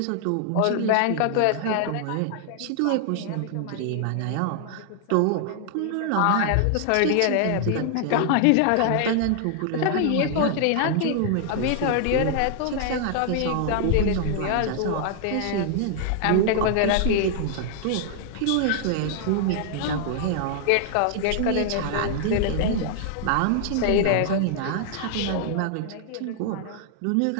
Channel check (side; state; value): both; different; correlation 0.00